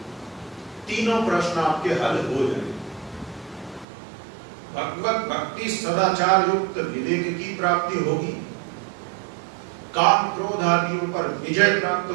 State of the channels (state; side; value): drops out; left; at 3.9 s